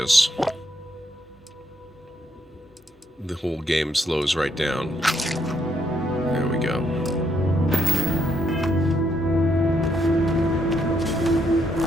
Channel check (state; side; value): normal; both; correlation 0.75